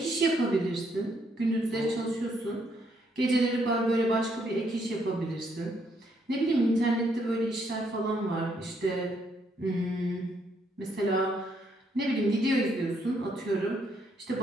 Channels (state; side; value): normal; both; correlation 0.72